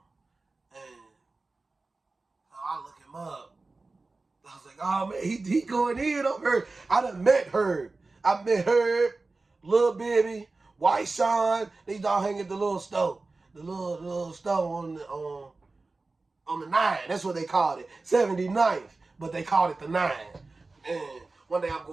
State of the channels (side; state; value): left; quieter; 3.5 dB